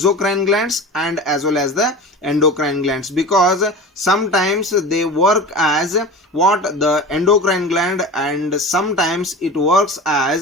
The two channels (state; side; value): normal; both; correlation 0.33